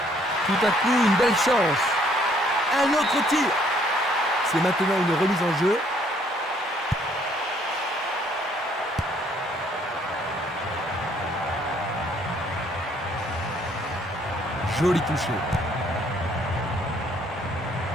Tout à coup, une belle chance. Un autre tir. C'est maintenant une remise en jeu. Joli touché.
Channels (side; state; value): both; normal; correlation 0.64